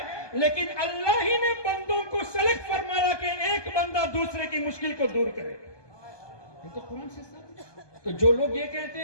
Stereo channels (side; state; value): right; late; 1.2 ms